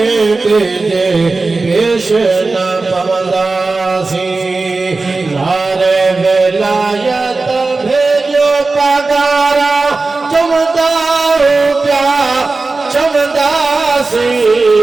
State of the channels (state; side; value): quieter; left; 3.7 dB